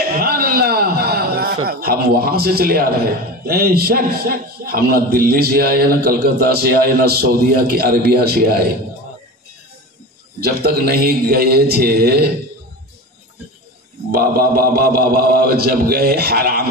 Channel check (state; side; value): normal; both; correlation 0.29